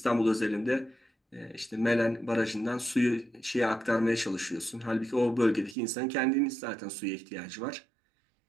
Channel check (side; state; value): left; drops out; at 5.8 s